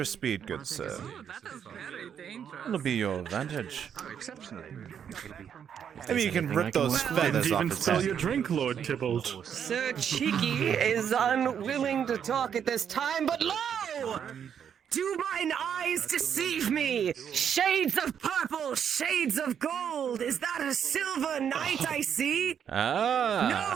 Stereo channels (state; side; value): quieter; left; 8.3 dB